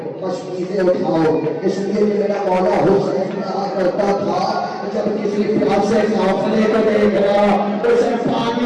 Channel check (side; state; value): both; identical; correlation 1.00